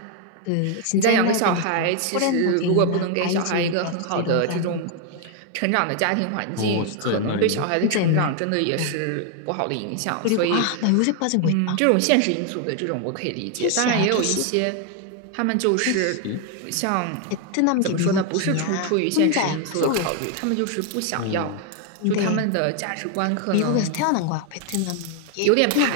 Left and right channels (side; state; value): both; different; correlation 0.00